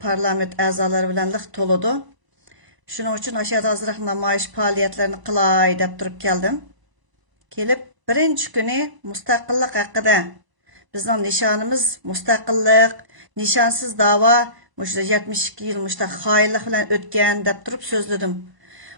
parlament a'zolari bilan liq to'ladi. Şunun için aşağıda azraq namoyish faoliyatlarini qilay deb turib keldim. Kelib birinchi kuni mustaqillik haqida bizning nishonimiz mustaqillik, nishonsiz da'vo, 72 yil xoinlik bilan o'tgan deb turib so'zladim.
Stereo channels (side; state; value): left; late; 1.0 ms